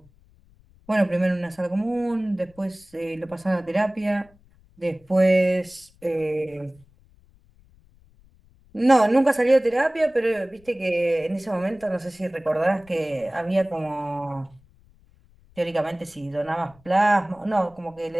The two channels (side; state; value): left; noise; rumble, 29 dB below the sound